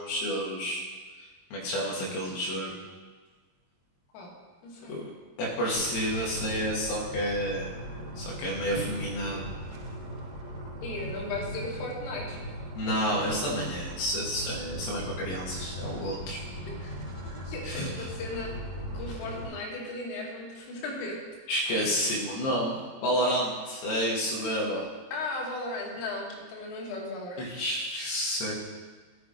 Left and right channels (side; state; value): right; late; 22 ms